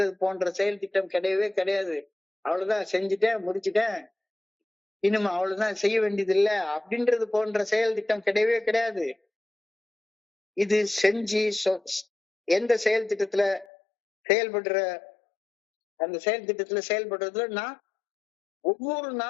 போன்ற செயல் திட்டம் கிடையவே கிடையாது. அவ்வளவுதான், செஞ்சுட்டேன் முடிச்சுட்டேன், இனிமே அவ்வளவுதான், செய்ய வேண்டியது இல்லை அப்படின்றது போன்ற செயல் திட்டம் கிடையவே கிடையாது. இது செஞ்சு எந்த செயல் திட்டத்துல செயல்படுற அந்த செயல் திட்டத்துல செயல்படுறதுல நான் ஒவ்வொரு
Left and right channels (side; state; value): right; drops out; at 13.7 s